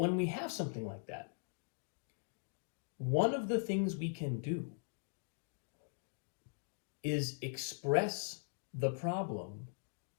we have something like that, one of the things we can do is express the problem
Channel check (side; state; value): right; silent; digital silence